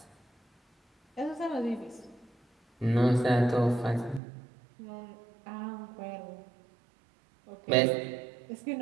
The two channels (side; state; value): left; drops out; at 4.2 s